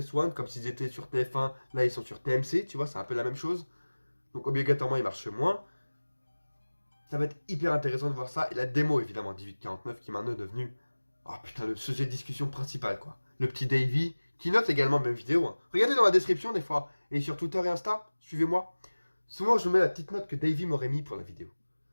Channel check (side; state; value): both; inverted; correlation -1.00